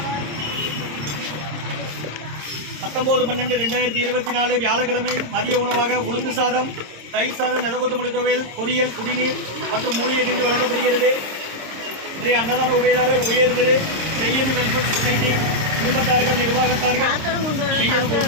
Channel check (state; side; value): late; left; 26 ms